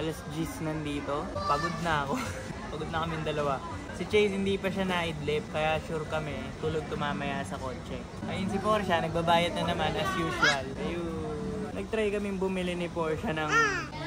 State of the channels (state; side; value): identical; both; correlation 1.00